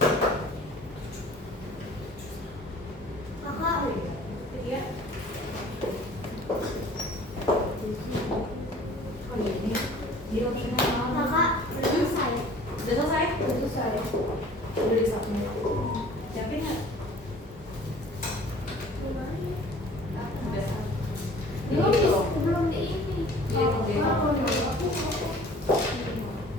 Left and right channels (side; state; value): both; normal; correlation 0.49